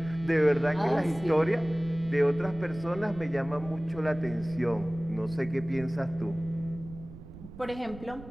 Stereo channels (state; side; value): noise; right; rumble, 15 dB below the sound